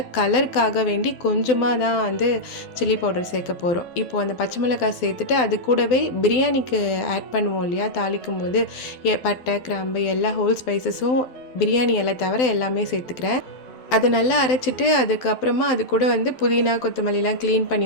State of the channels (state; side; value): late; right; 12 ms